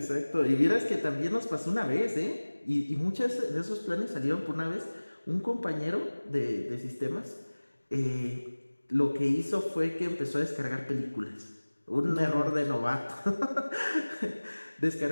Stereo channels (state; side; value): inverted; both; correlation -1.00